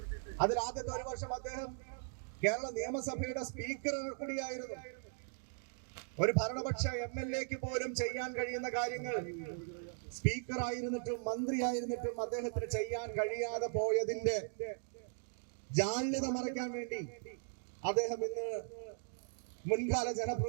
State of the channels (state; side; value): silent; left; digital silence